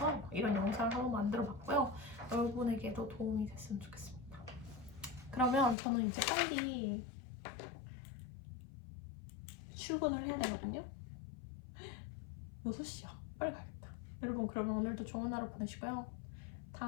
이런 영상을 한번 만들어 봤고요. 여러분에게도 도움이 됐으면 좋겠습니다. 그러면 저는 이제 빨리 출근을 해야 되거든요. 6시야. 빨리 가야겠다. 여러분, 그러면 오늘도 좋은 하루 보내시고요.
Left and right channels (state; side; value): drops out; right; at 5.8 s